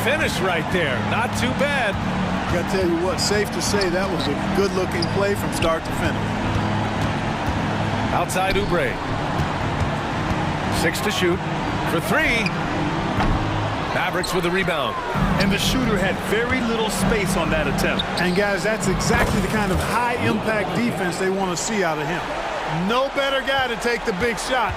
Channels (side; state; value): both; identical; correlation 1.00